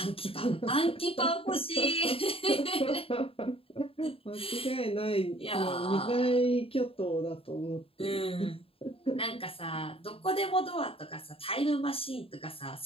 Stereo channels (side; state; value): right; late; 0.27 ms